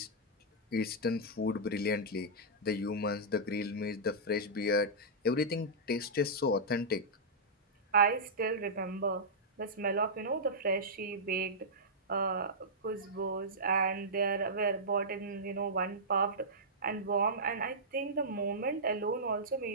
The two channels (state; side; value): normal; both; correlation -0.12